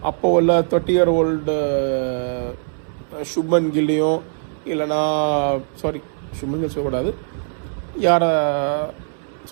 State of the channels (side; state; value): left; silent; 65 dB below the other